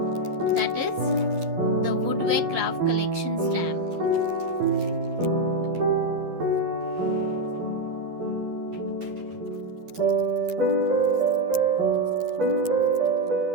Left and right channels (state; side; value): late; left; 11 ms